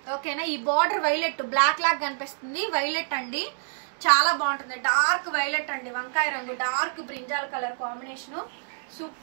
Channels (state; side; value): silent; left; digital silence